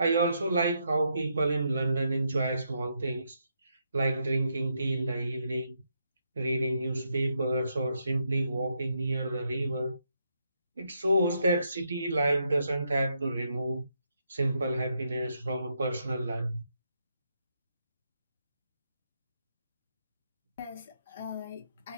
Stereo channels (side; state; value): both; inverted; correlation -0.79